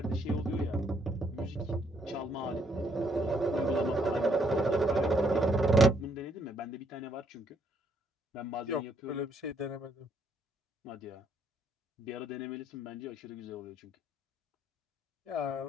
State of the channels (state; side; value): normal; both; correlation 0.70